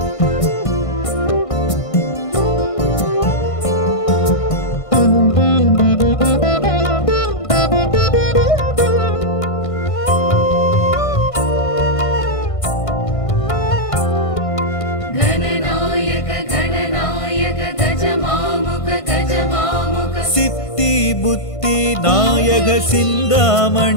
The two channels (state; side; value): late; right; 1.5 ms